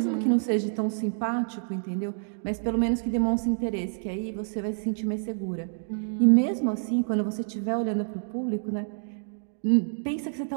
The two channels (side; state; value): left; silent; digital silence